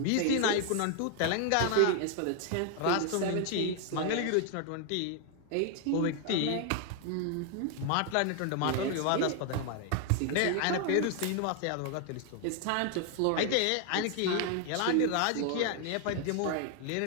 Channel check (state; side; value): different; both; correlation 0.00